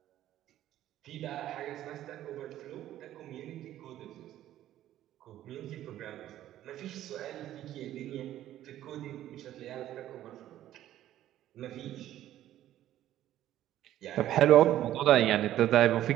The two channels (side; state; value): left; quieter; 12.9 dB